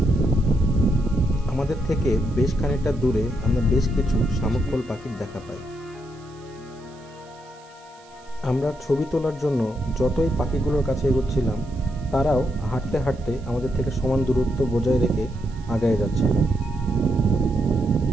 আমাদের থেকে বেশ খানিকটা দূরে আমরা বেশ কিছু শামুকফল পাখির দেখা পাই। আমরা ছবি তোলার জন্য যতই পাখিগুলোর কাছে এগোচ্ছিলাম তারাও হাঁটতে হাঁটতে আমাদের থেকে সমান দূরত্ব বজায় রেখে আগায় যাচ্ছিল।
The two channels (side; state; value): right; noise; hiss, 28 dB below the sound